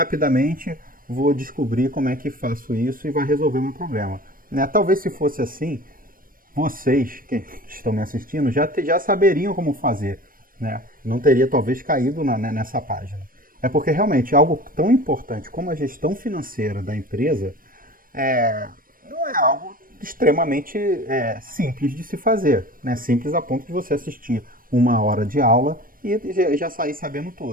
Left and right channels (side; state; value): left; late; 0.41 ms